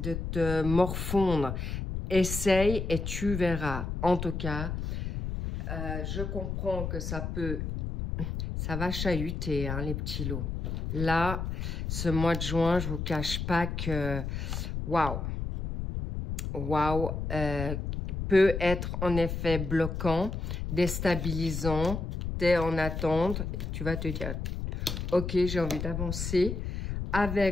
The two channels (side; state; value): left; noise; rumble, 4 dB below the sound